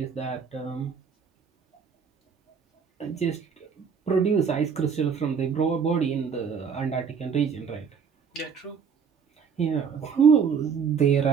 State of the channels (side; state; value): left; quieter; 6.4 dB